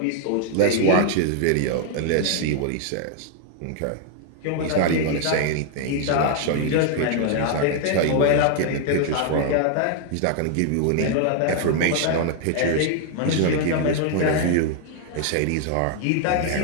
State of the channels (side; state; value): both; different; correlation 0.00